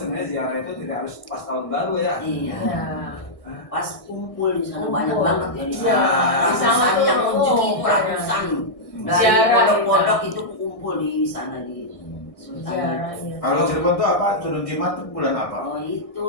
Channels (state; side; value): late; right; 1.6 ms